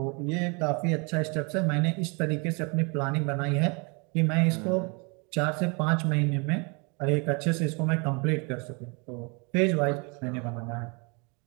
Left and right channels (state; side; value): quieter; left; 31.9 dB